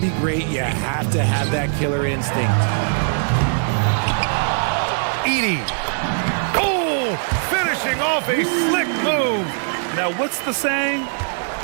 be great, you have to have that killer instinct. Edey. Oh, finishing off a slick move. Now, what's the saying?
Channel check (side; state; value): left; silent; digital silence